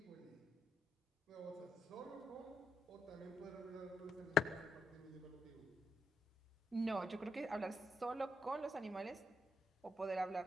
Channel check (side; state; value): both; normal; correlation 0.79